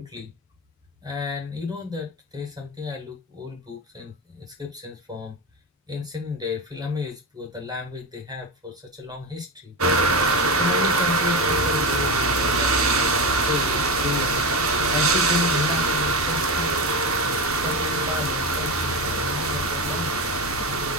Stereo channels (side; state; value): both; normal; correlation 0.19